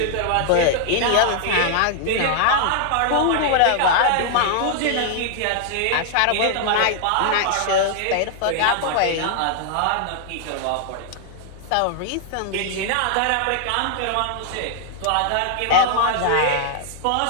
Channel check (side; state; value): both; different; correlation 0.00